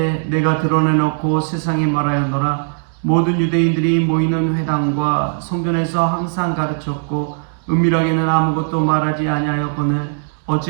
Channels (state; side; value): silent; left; digital silence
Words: 내가 드러내놓고 세상에 말하였노라. 모든 유대인들이 모이는 회당과 성전에서 항상 가르쳤고 은밀하게는 아무것도 말하지 아니하였거늘